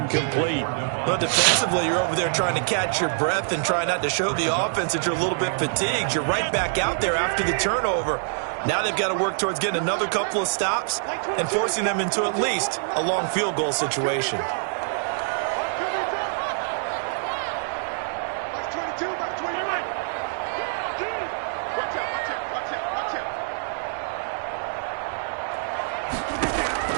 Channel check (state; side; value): silent; left; 62 dB below the other